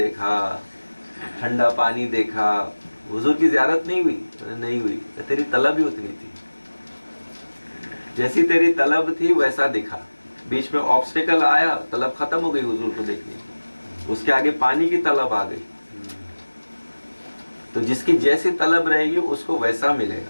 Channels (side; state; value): both; inverted; correlation -1.00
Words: ٹھنڈا پانی دیکھا. حضور کی زیارت نہیں ہوئی؟ نہیں ہوئی. تیری طلب ہی اتنی تھی، جیسی تیری طلب تھی ویسا دکھا. بیچ میں آبسٹیکل آیا، طلب ختم ہو گئی حضور کو دیکھنے کی، اس کے آگے پانی کی طلب آ گئی. تو جس کی جیسی طلب رہے گی اس کو ویسا ملے